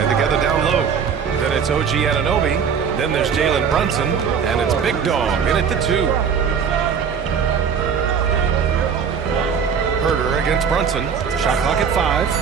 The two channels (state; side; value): quieter; left; 6.8 dB